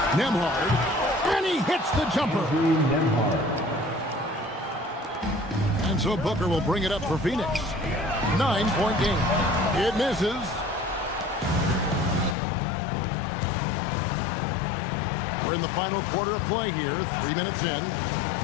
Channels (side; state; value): right; drops out; at 12.4 s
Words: Nembhard. And he hits the jumper. And so Booker will bring it up for Phoenix. 9-point game. It misses. We're in the final quarter of play here. 3 minutes in.